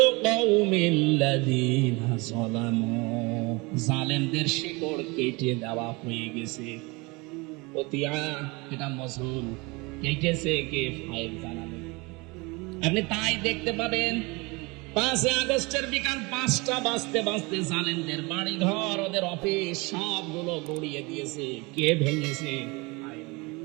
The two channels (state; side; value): quieter; left; 26.0 dB